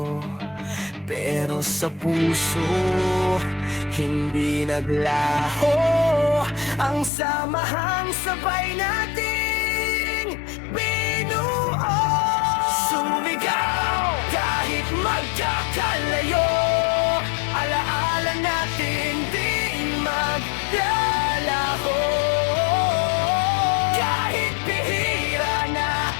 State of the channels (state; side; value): drops out; right; at 7.1 s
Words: Pero sa puso, hindi naglaho ang samahang sabay nating binuo. Sumigaw kahit magkakalayo, alaala natin di maglalaho. Kahit bihira na